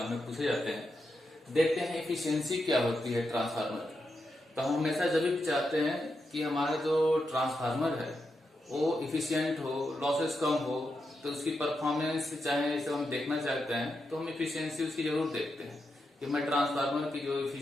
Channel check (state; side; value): normal; both; correlation 0.86